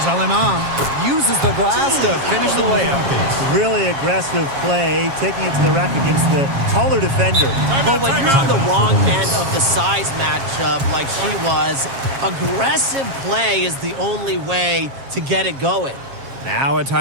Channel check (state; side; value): late; left; 7.3 ms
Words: Alemán. Uses the glass to finish the layup. Really aggressive play, taking it to the rack against the taller defender. But when you're on the wrong end of the size matchup like she was, aggressive play is the only way to get it going. Now a